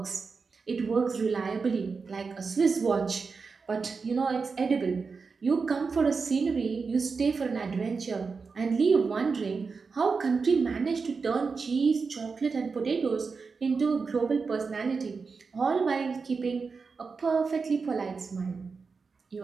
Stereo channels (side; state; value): left; quieter; 4.8 dB